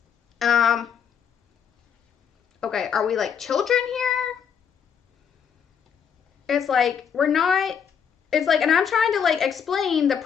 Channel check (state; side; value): quieter; right; 7.5 dB